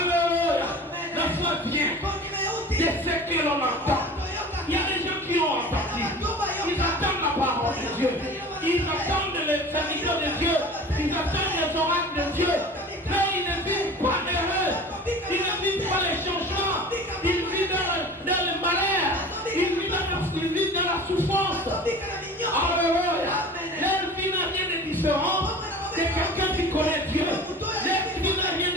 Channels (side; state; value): both; normal; correlation 0.39